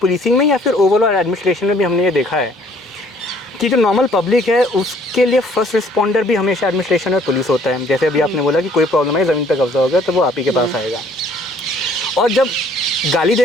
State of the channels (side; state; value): both; normal; correlation 0.59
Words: में या फिर ओवरऑल एडमिनिस्ट्रेशन में भी हमने ये देखा है कि जो नॉर्मल पब्लिक है उसके लिए फर्स्ट रिस्पॉन्डर भी हमेशा एडमिनिस्ट्रेशन और पुलिस होता है। जैसे अभी आपने बोला कि कोई प्रॉब्लम है, ज़मीन पर कब्जा हो गया, तो वो आप ही के पास आएगा। और जब गाली